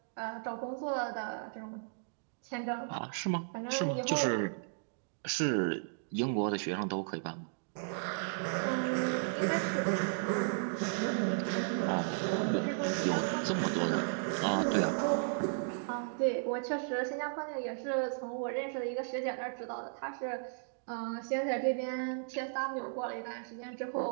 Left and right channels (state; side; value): silent; left; digital silence